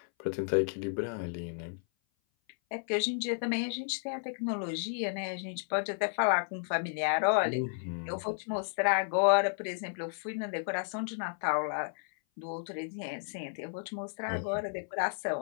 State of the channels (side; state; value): right; silent; 56 dB below the other